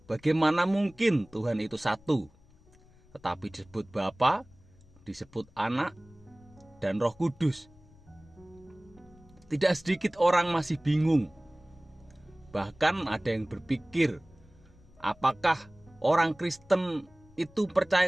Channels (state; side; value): noise; left; rumble, 27 dB below the sound